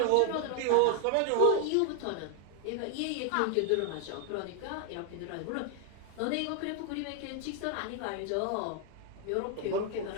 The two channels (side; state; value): both; different; correlation 0.01